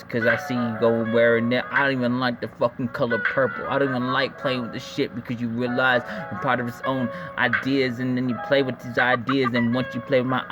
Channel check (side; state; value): both; identical; correlation 1.00